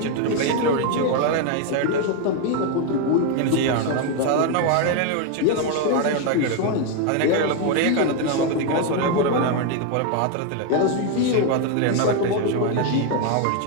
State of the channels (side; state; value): both; different; correlation 0.01